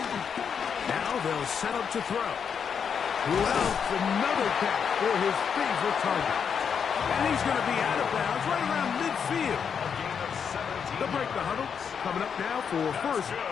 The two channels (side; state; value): right; quieter; 7.0 dB